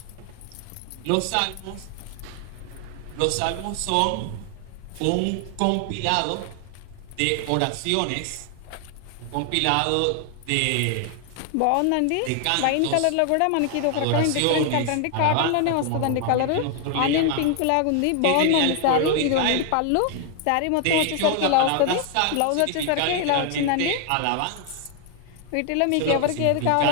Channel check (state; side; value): different; both; correlation 0.00